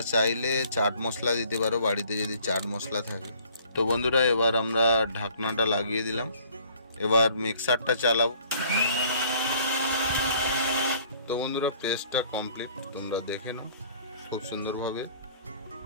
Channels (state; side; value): inverted; both; correlation -0.56